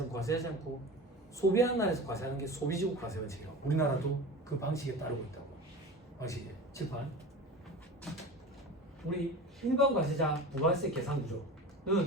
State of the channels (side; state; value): both; normal; correlation 0.33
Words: 과세하지 않고 소비하는 나라에서 과세하는 게 소비지국 과세 원칙이라고. 우리나라도 그 방식에 따르고 있다고. 방식이 칠판. 우리 일반 과세자 부가세 계산